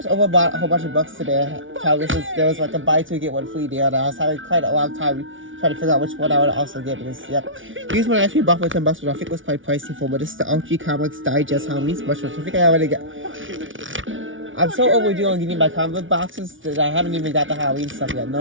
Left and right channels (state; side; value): late; left; 0.57 ms